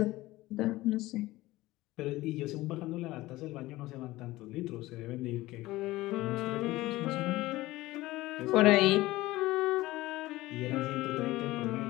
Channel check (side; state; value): right; quieter; 18.1 dB